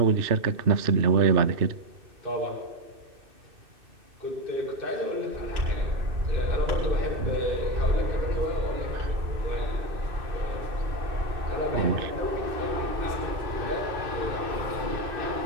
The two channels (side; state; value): left; late; 2.6 ms